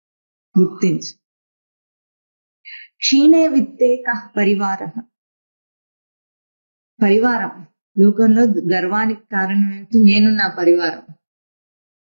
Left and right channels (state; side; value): inverted; both; correlation -1.00